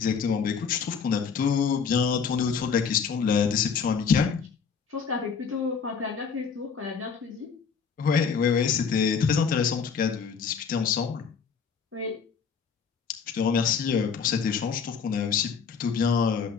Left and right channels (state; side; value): quieter; right; 6.2 dB